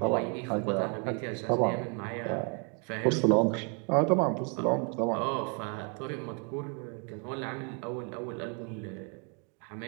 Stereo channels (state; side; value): quieter; left; 36.9 dB